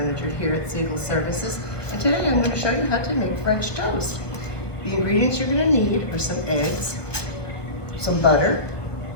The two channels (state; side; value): late; right; 1.1 ms